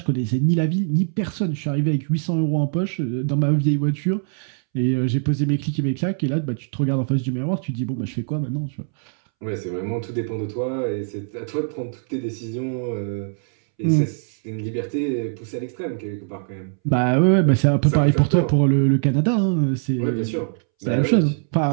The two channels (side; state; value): left; silent; 64 dB below the other